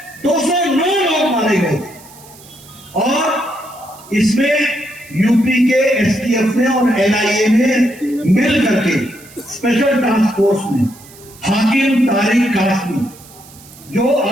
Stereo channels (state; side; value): noise; right; hiss, 22 dB below the sound